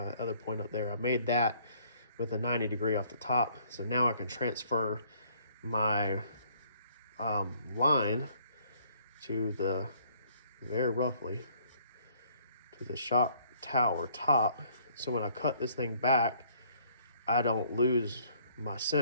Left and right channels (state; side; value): inverted; both; correlation -0.62